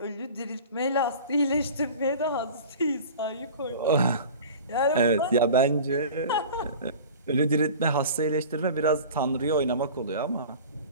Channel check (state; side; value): inverted; both; correlation -0.39